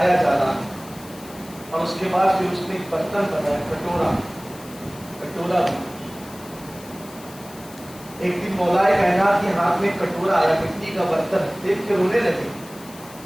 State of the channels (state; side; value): noise; left; hiss, 19 dB below the sound